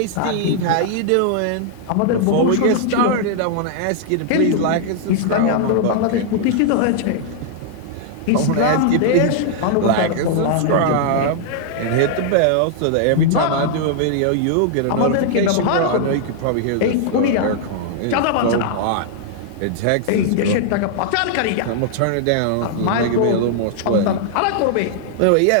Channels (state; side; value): different; both; correlation -0.01